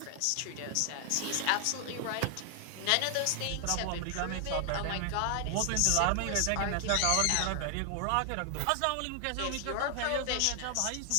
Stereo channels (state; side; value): different; both; correlation 0.00